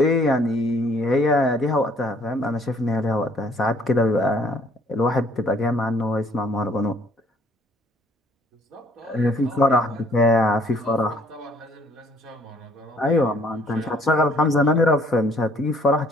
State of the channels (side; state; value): both; normal; correlation 0.62